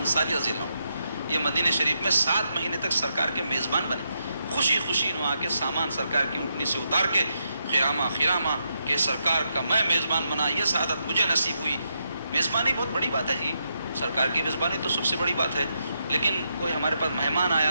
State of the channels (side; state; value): both; inverted; correlation -0.82